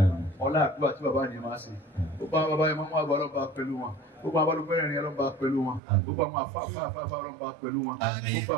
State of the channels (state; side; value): drops out; left; at 5.8 s